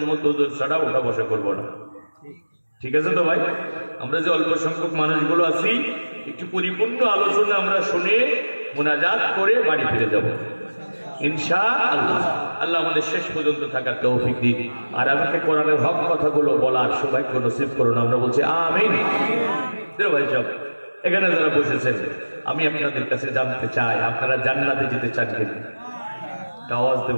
হুজুর ছাড়া ওঠা বসা করবো না, ঠিক আছে তো ভাই? আমরা যে অল্প সংখ্যক মানুষগুলো আছি, একটু পরিপূর্ণ আলোচনা আমরা শুনে মোনাজাত করে বাড়ি ফিরে যাব ইনশাআল্লাহ। আল্লাহ আমাদের শেষ পর্যন্ত থাকার তৌফিক দিন, আর আমাকে কোরআনের হক কথাগুলো বলার সৌভাগ্য নসিব করুন। আমরা বলছি আমিন। ভাই সব এখানে যারা বসেছেন, আমি আপনাদের কাছে জানতে চাই, আপনারা জান্নাতে যেতে চান কিনা? আওয়াজ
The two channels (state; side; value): inverted; both; correlation -1.00